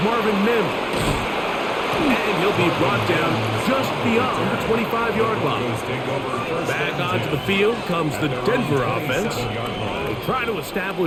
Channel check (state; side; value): identical; both; correlation 1.00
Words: Marvin Mims. And he'll be brought down just beyond the 25-yard line. Back onto the field comes the Denver offense. They'll try to